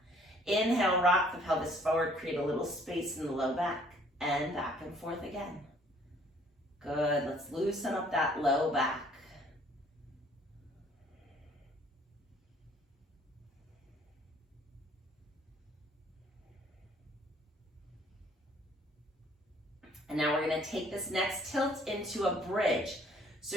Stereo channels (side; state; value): both; normal; correlation 0.59